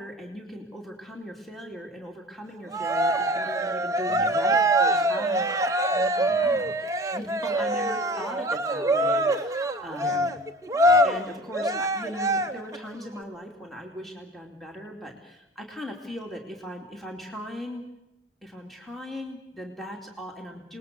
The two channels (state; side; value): normal; both; correlation 0.41